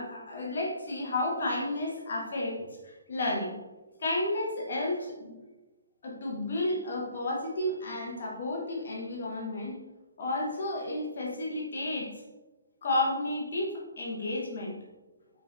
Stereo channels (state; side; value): inverted; both; correlation -0.60